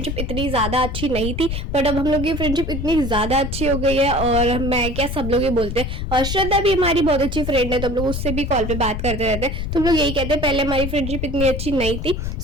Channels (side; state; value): left; noise; rumble, 4 dB below the sound